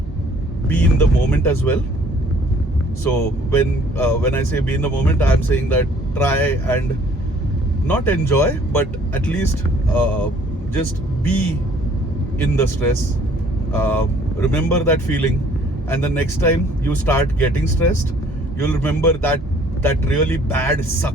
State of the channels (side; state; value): both; normal; correlation 0.58